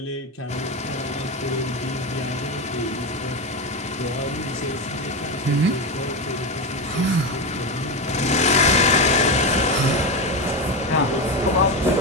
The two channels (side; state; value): both; normal; correlation 0.15